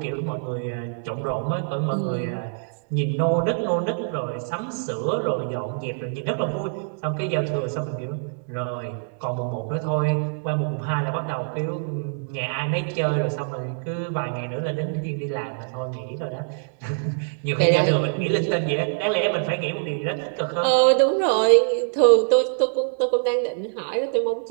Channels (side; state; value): left; silent; digital silence